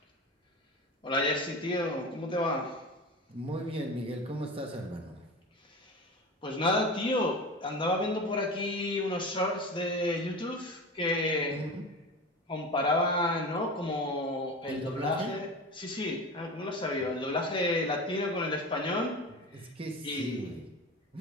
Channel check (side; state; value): both; normal; correlation 0.29